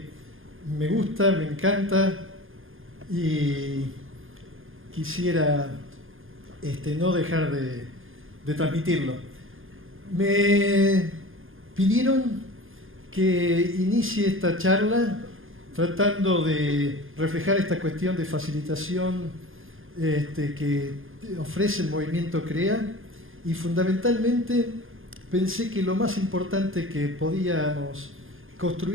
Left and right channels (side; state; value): left; late; 0.59 ms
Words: me gusta, me encanta y quisiera no dejar de transmitirlo. Me pidieron que inicie esta charla tratando de reflejar esta cuestión de facilitación que ofrece el movimiento CREA, y fundamentalmente pensé que lo más importante que podíamos